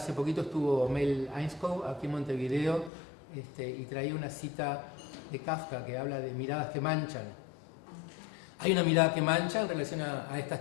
poquito estuvo Mel Einskov aquí en Montevideo y traía una cita de Kafka que habla de miradas que manchan. Hay una mirada que mancha en relación a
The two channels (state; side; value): drops out; right; at 2.9 s